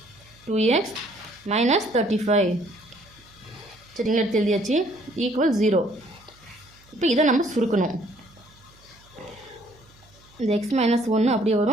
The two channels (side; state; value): right; noise; hum, 28 dB below the sound